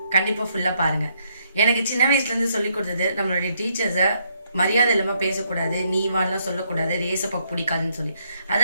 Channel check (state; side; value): inverted; both; correlation -0.73